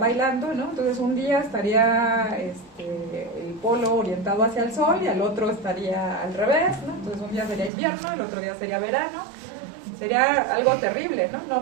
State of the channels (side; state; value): left; drops out; at 7.7 s